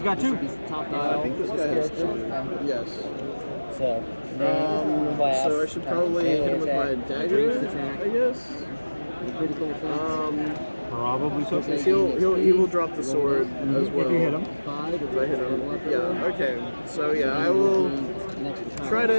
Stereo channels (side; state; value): both; inverted; correlation -1.00